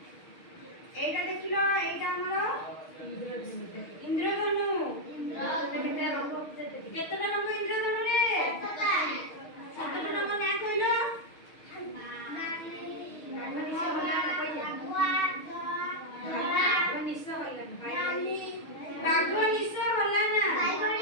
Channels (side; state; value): right; late; 6.5 ms